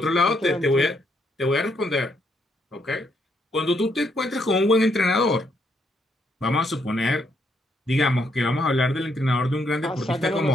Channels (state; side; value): normal; both; correlation 0.74